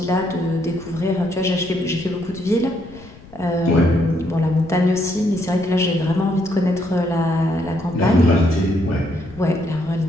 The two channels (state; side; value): noise; left; rumble, 20 dB below the sound